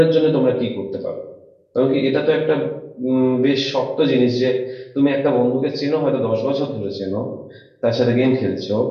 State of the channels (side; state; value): both; identical; correlation 1.00